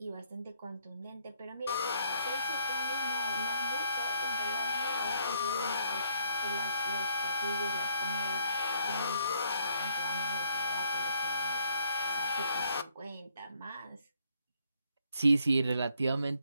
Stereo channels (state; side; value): inverted; both; correlation -0.68